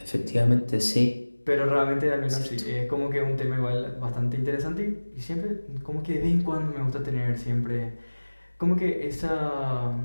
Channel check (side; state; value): both; inverted; correlation -1.00